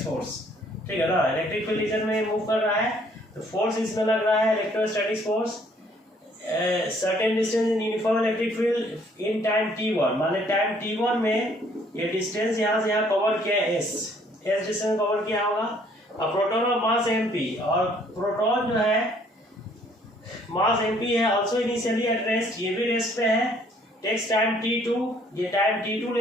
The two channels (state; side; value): normal; both; correlation 0.62